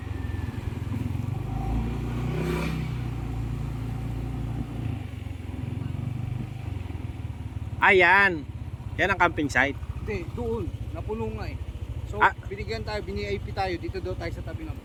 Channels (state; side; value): identical; both; correlation 1.00